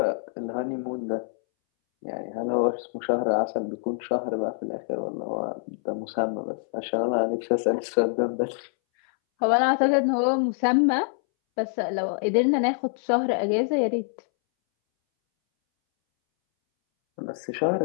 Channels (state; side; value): silent; right; 61 dB below the other